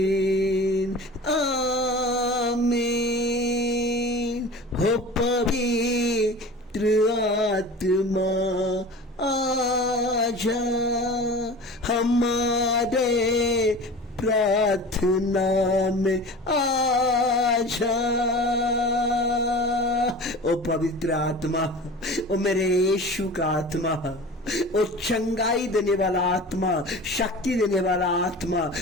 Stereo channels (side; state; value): both; normal; correlation 0.37